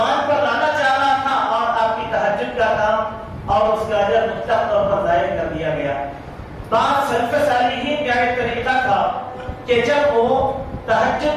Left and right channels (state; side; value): identical; both; correlation 1.00